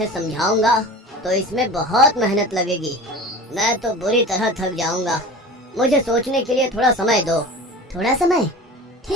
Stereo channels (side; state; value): both; normal; correlation 0.35